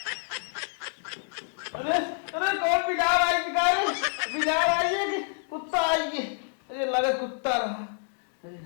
अरे अरे कौन बिजार आई बिजार आई है कि कुत्ता आई है? अरे लगा कुत्ता रहा। अरे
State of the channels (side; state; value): right; silent; digital silence